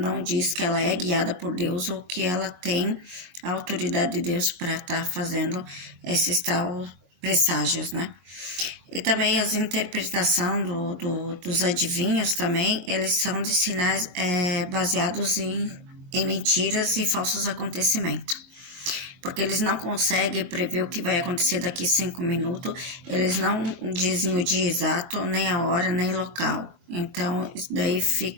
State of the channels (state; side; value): late; left; 22 ms